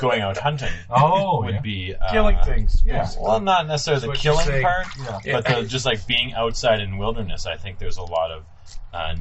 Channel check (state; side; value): identical; both; correlation 1.00